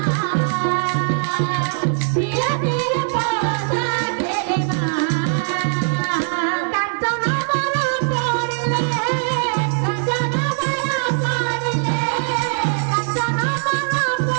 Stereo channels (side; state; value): left; silent; digital silence